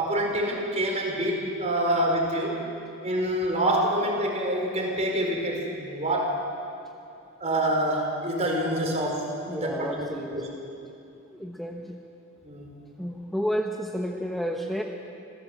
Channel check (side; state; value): both; normal; correlation 0.17